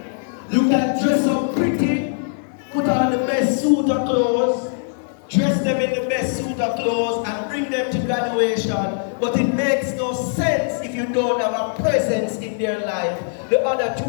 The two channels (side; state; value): right; silent; digital silence